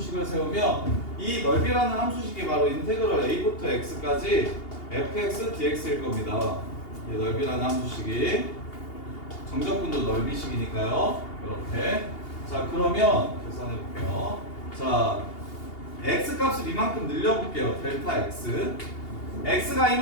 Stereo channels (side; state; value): right; late; 2.8 ms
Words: 세우면 이 넓이라는 함수식이 바로 인테그럴 a부터 x까지 fx dx일 겁니다. 이 넓이라는 함수식이 정적분도 넓이식이니까요. 이렇게. 자, 그러면 계산해 볼게요. 자, x값을 이만큼 늘려볼게요. 델타 x. x가